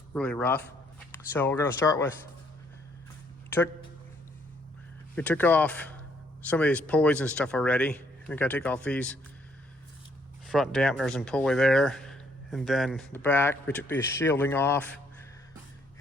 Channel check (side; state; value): both; normal; correlation 0.68